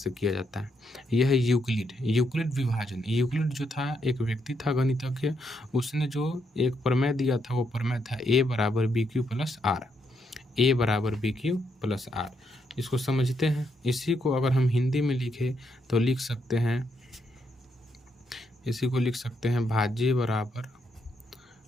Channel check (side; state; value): both; normal; correlation 0.77